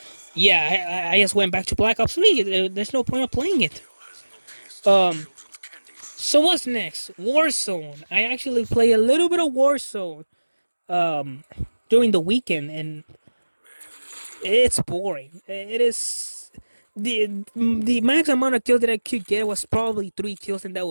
yeah, I just went back to Black Ops 3. There's no point of playing it. Um, so what's next? Warzone. I actually play a little bit of Warzone during the weekend, and it's boring. It is the max amount of kills that I could get was probably 3 kills, and that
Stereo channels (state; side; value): inverted; both; correlation -1.00